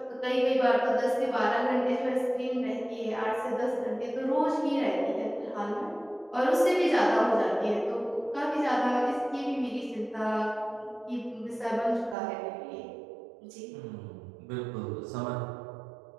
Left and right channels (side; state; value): left; drops out; at 12.2 s